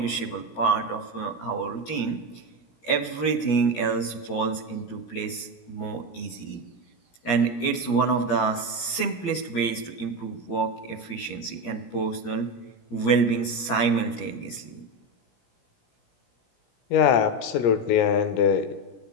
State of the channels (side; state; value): right; late; 17 ms